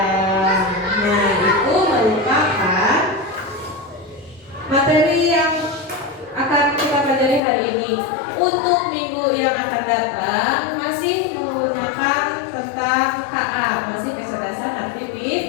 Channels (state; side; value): drops out; right; at 7.4 s